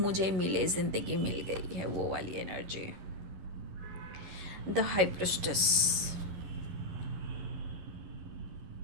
मिले, ज़िंदगी मिल गई है, वो वाली एनर्जी। द हाई प्रिस्टेस,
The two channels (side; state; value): left; late; 11 ms